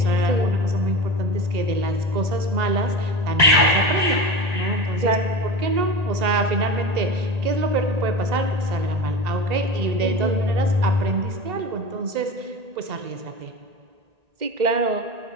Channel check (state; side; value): late; left; 1.9 ms